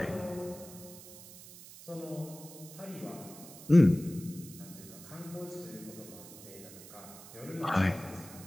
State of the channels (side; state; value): right; noise; hiss, 16 dB below the sound